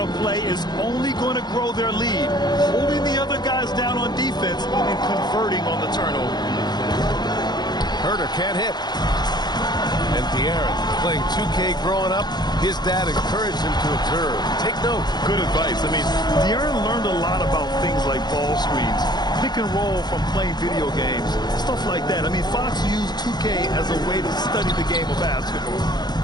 play is only going to grow their lead, holding the other guys down on defense and converting on the turnover. Herter can't hit. And De'Aaron, playing 2K growing up, his dad encouraged him to observe. Take note. Good advice. I mean, De'Aaron learned a lot about things like ball screens, pick and roll from playing video games, stuff like that. I mean, Fox used 2K as a way to study the game of basketball.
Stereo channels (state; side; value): late; right; 0.20 ms